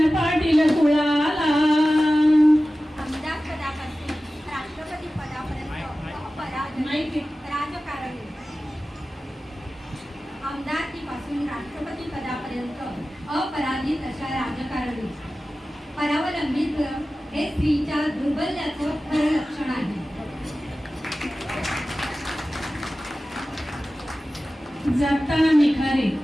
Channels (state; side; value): normal; both; correlation 0.95